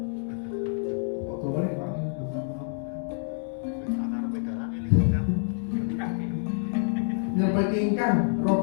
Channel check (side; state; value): right; silent; 60 dB below the other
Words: kok dawane Pak nyepeti ingkang